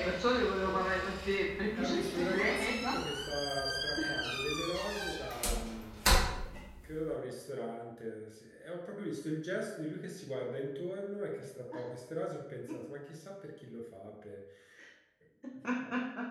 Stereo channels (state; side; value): identical; both; correlation 1.00